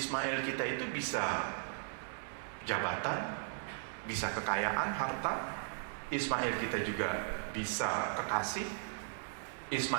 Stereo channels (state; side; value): silent; left; 53 dB below the other